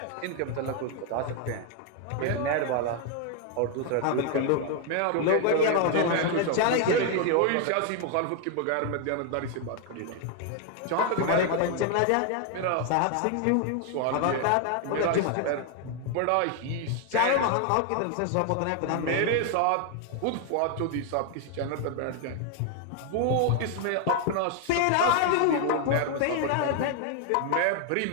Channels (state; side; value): different; both; correlation 0.00